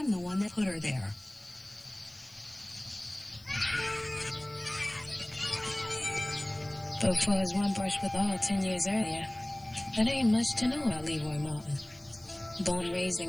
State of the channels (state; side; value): noise; left; hiss, 26 dB below the sound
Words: the one that put her there. But for his one brush with all 10 years earlier, there ain't much to know about Leroy Martin. Born and raised